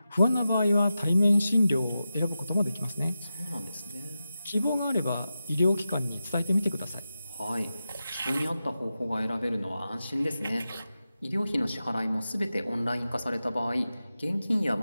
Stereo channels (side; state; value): both; inverted; correlation -0.92